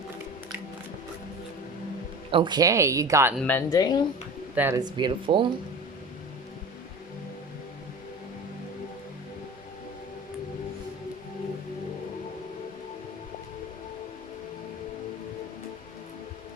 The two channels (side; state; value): both; normal; correlation 0.34